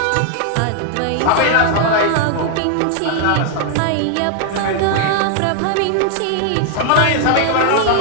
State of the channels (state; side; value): different; both; correlation 0.00